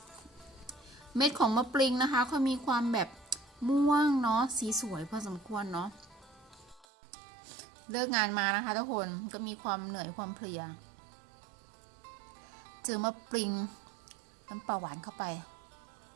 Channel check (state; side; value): drops out; left; at 6.9 s